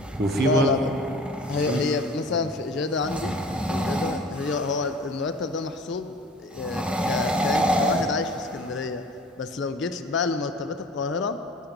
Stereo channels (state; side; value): normal; both; correlation 0.44